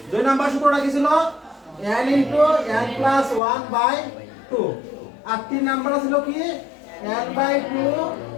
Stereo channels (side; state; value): right; drops out; at 3.4 s